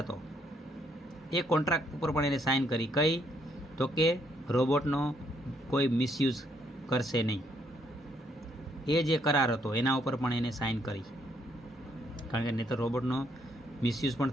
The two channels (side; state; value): both; normal; correlation 0.71